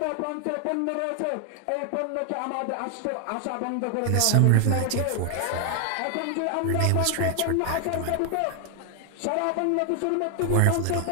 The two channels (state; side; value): different; both; correlation 0.00